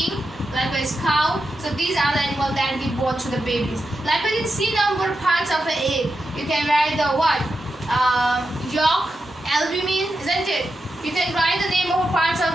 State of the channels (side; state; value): both; normal; correlation 0.88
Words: likewise cow. So these are the animals that give birth to the babies. Likewise in C number, parts of an egg, you can write the what? Yolk, albumin, isn't it? You can write the name of parts of